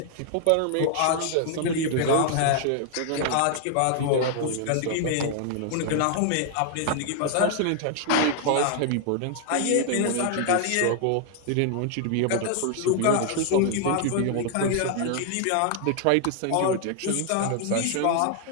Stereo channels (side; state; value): both; different; correlation 0.00